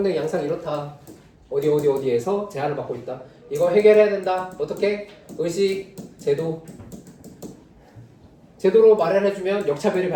양상 이렇다. 어디에서 제한을 받고 있다. 이거 해결해야 된다. 어떻게? 의식, 제도로 마련해주면 역차별이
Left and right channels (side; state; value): both; identical; correlation 1.00